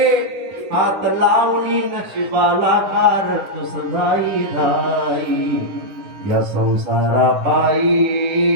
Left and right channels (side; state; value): left; late; 10 ms